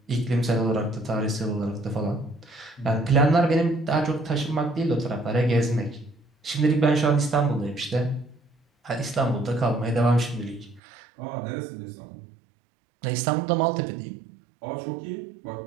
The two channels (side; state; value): left; drops out; at 10.8 s